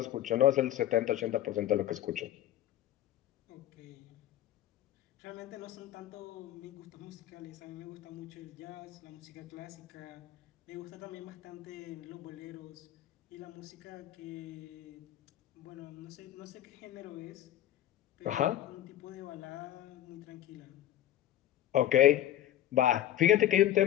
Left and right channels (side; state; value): right; quieter; 12.7 dB